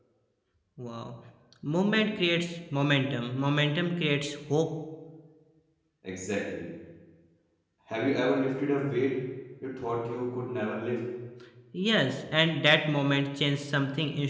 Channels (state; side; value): identical; both; correlation 1.00